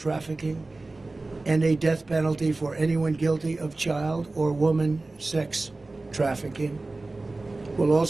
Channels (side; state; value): left; quieter; 3.2 dB